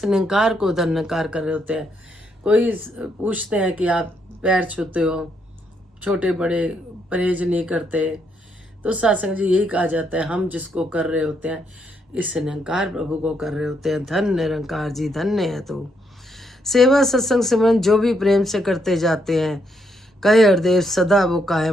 निरंकार को धन्यकार कर रहे होते हैं। कोई पूछते हैं कि आप पैर छूते हो, छोटे बड़े परहेज नहीं करते, तो सत्संग जी यही कहा जाता है हम जिसको कर रहे होते हैं इस निरंकार प्रभु को कर रहे होते हैं। धन निरंकार जी, धन्य है तो। सेवा सत्संग सिमरन जो भी प्रेम से करते जाते हैं, कहे हरदेव सदा वो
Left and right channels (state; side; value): normal; both; correlation 0.76